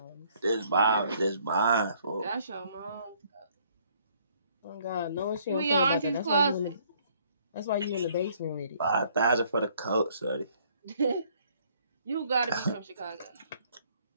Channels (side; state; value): both; inverted; correlation -0.64